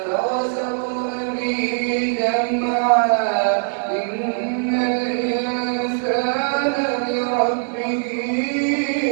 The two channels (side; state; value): left; silent; digital silence